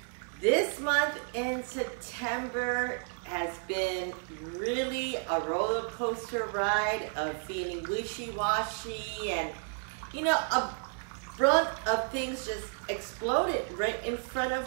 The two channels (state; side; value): silent; left; 57 dB below the other